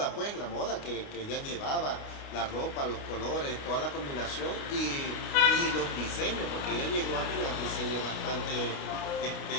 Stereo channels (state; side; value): late; right; 29 ms